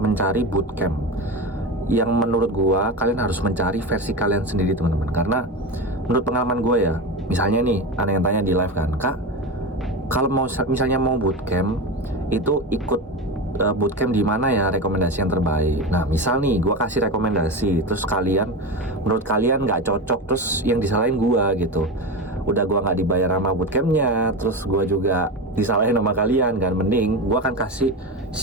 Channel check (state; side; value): normal; both; correlation 0.22